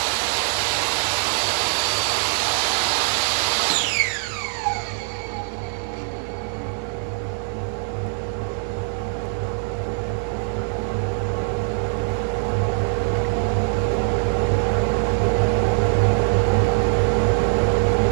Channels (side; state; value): left; silent; 56 dB below the other